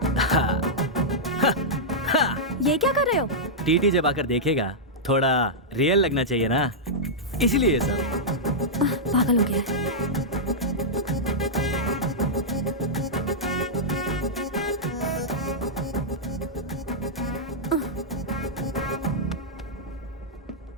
ये क्या कर रहे हो? टीटी जब आकर देखेगा थोड़ा रियल लगना चाहिए ना, इसलिए ये सब। पागल हो गया है।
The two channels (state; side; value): normal; both; correlation -0.10